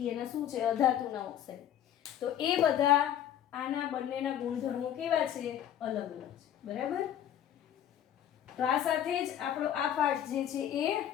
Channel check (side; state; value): right; quieter; 10.5 dB